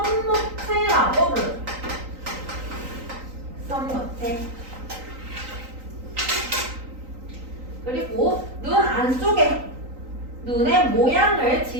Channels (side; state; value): left; late; 3.9 ms